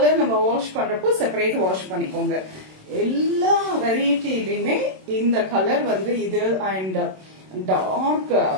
நம்ம வாஷ் பண்றப்போ செப்பரேட் வாஷ் பண்ணிக்கோங்க. எல்லா வெரைட்டிலையுமே இந்த கலர் வந்து இது அண்ட் டார்க்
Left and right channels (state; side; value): late; left; 27 ms